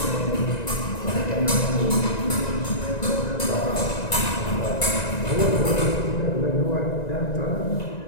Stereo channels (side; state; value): right; late; 1.9 ms